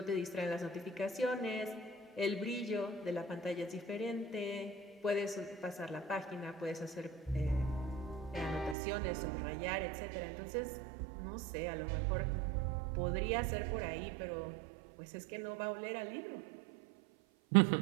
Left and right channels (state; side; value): drops out; left; at 8.8 s